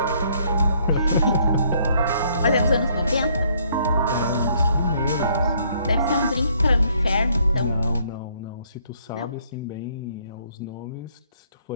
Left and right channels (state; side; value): inverted; both; correlation -0.66